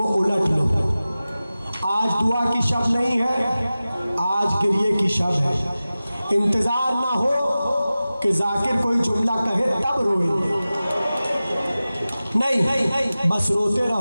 उलट लो। आज दुआ की शब नहीं है, आज गिरिए की शब है। इंतजार ना हो कि जाकिर कोई जुमला कहे तब रोएंगे, नहीं, बस रोते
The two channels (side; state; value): both; inverted; correlation -0.96